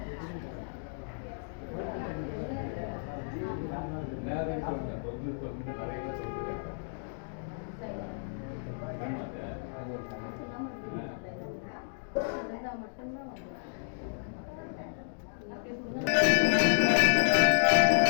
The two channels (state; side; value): silent; right; digital silence